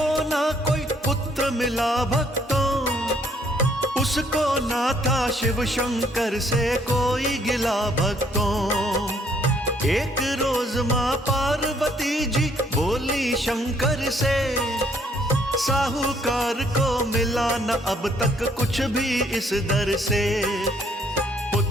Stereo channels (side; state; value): both; normal; correlation 0.66